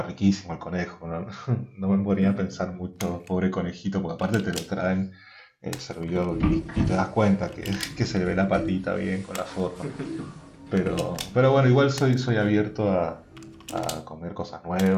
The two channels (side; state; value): both; identical; correlation 1.00